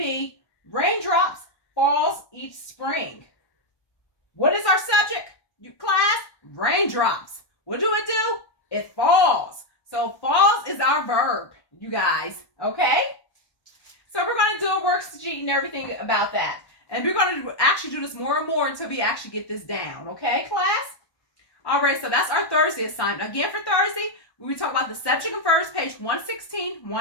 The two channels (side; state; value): right; late; 1.2 ms